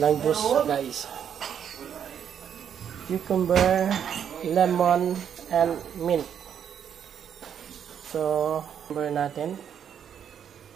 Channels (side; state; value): left; quieter; 8.5 dB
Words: juice, guys. Cucumber, lemon, and mint. So, cucumber natin.